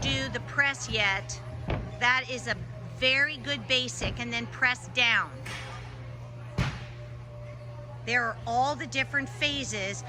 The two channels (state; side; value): identical; both; correlation 1.00